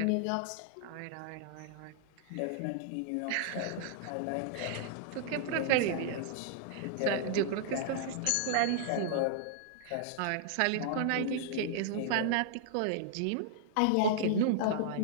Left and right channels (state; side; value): different; both; correlation -0.01